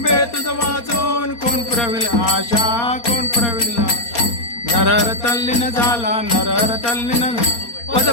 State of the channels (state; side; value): late; right; 4.3 ms